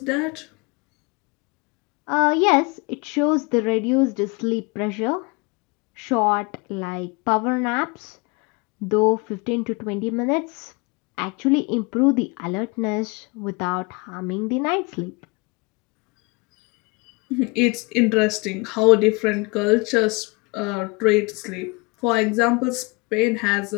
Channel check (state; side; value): quieter; right; 28.3 dB